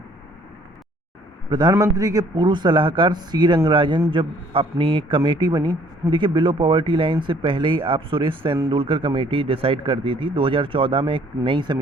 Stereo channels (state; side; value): normal; both; correlation 0.59